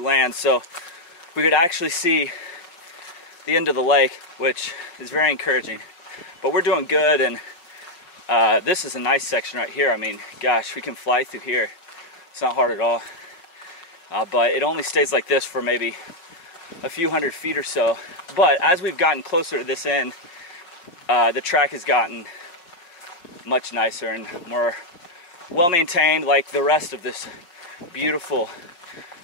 So we could actually see the end of the lake, which is very encouraging. But we're doing good, and this is a nice section right here. I mean, gosh, we can fly through here. It's not hard at all. But it only stays like this for maybe a few hundred feet or so. But as we've gotten closer to this end, the track has gotten much nicer and more well-maintained, like the rest of this beautiful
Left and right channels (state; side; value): late; right; 5.6 ms